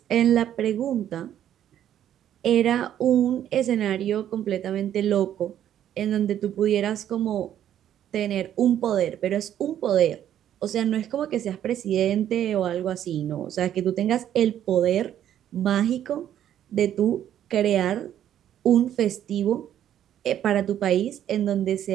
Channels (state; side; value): quieter; left; 10.8 dB